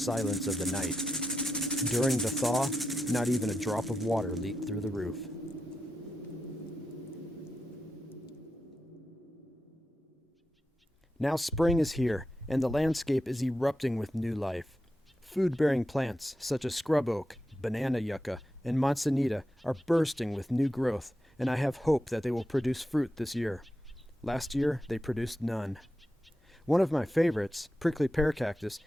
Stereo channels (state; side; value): normal; both; correlation 0.88